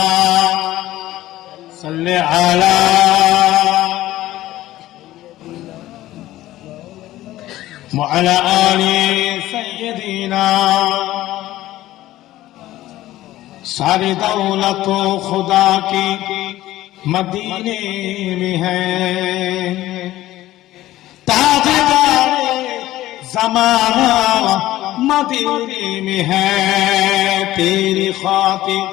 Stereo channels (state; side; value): quieter; right; 15.4 dB